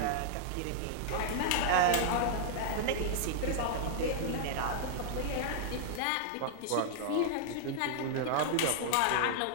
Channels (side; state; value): both; different; correlation -0.01